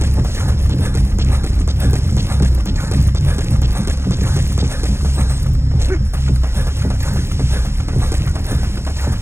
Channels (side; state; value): left; late; 0.12 ms